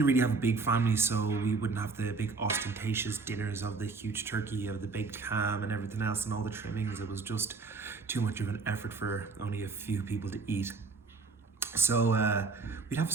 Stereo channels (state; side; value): quieter; left; 4.4 dB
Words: really have a big family, so we wouldn't have the big ostentatious dinners of the huge turkey, of the baked ham and everything else and all the trimmings. It was just too much of an effort for only a few people to eat. So we'd have